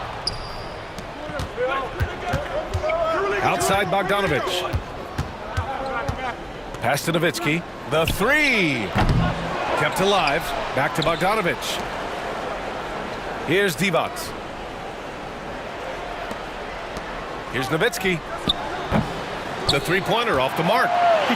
Outside Bogdanovic. Pass to Nowitzki. The 3. Kept alive. Back to Bogdanovic. Here's Divac. Here's Nowitzki. The three-pointer off the mark. He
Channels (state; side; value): identical; both; correlation 1.00